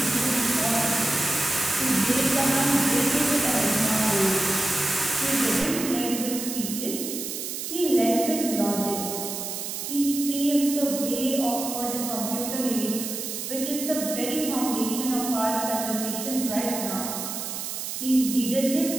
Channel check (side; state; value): right; noise; hiss, 5 dB below the sound